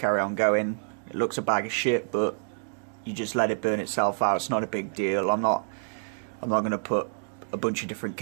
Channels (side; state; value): left; silent; digital silence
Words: on going. It looks a bag of shit, but you just let it burn itself out. It's not a big deal. I'm not going to put a bunch of different